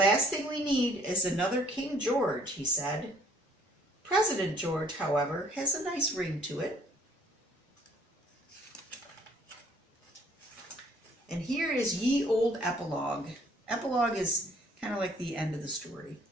thing we need is another King George, he said. President George, however, has a nice ring to it. And here is ye old epilogue. Epilogue is kind of like the end of the story.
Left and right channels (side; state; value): both; normal; correlation 0.60